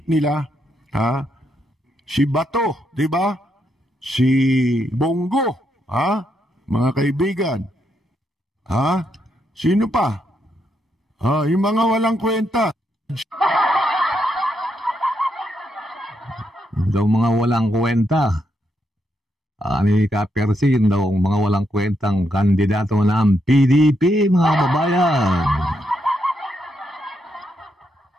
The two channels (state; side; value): normal; both; correlation 0.79